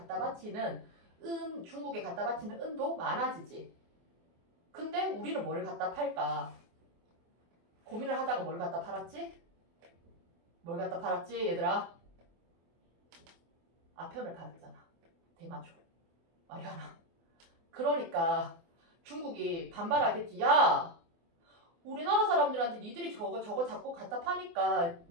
바치는 중국에 갖다 바치는 은도 많아지지. 근데 우리는 뭘 갖다 팔까? 고민을 하다가 뭘 갖다 팔았지? 뭘 갖다 팔았지 얘들아? 아편을 팔았잖아. 대마초. 마리아나. 그러니까 중국이 반발하겠지. 야! 우리나라 사람들한테 니들이 저거 자꾸 갖다 파니까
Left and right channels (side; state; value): left; late; 24 ms